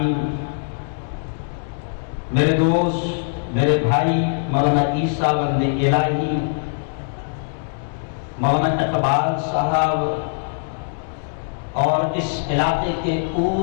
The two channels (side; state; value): right; silent; 64 dB below the other